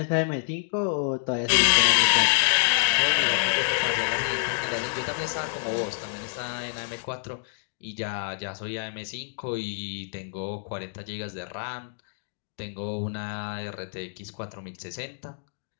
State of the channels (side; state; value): right; silent; 60 dB below the other